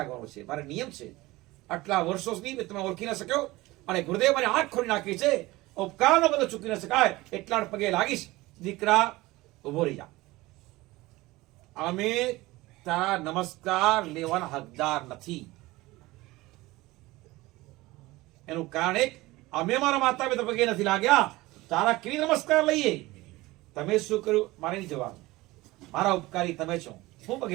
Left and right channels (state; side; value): quieter; left; 19.8 dB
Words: છે, મારે નિયમ છે. આટલા વર્ષો સુધી તમે ઓળખી ન શક્યો અને ગુરુદેવ મારી આંખ ખોલી નાખી છે, ઉપકારનો બધો ચૂકી ન શકાય, એટલા પગે લાગીશ. દીકરા ઉભો રહી જા, અમે તારા નમસ્કાર લેવાના હકદાર નથી. એનું કારણ એક, અમે મારા માતા પિતા પગે નથી લાગ્યા, તારા કેવી નમસ્કાર લઈએ? તમે શું કર્યું મારે નહીં જવાનું, મારા ઉપકારી તમે છો, હું